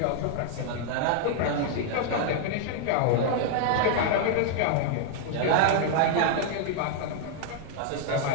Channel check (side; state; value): both; different; correlation 0.00